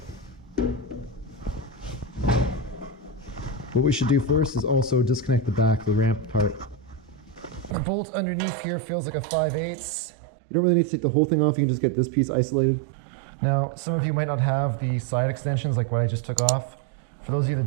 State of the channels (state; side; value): drops out; left; at 7.8 s